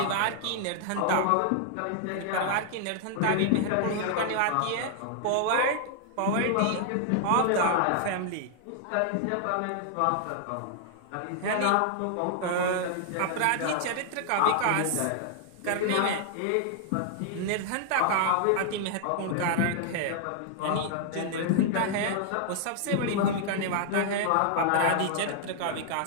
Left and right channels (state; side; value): different; both; correlation 0.00